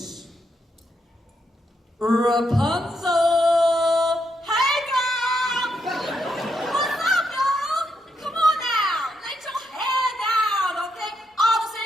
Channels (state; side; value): normal; both; correlation 0.80